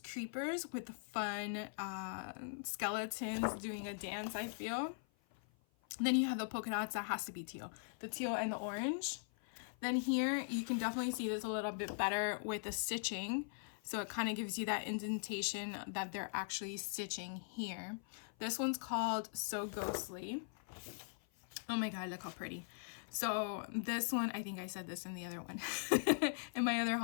with the fun skeletons doing a dance, I feel. And then you have the polka dots that has to be teal. The teal and the orange. Then here you can definitely see this a little bit better with the stitching. So it kind of gives you that indentation that they're actually stitching here. This one's called So Ghostly. Oh my God, look how pretty. So this one, I think I said this in the other one, in my other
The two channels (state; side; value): silent; right; 50 dB below the other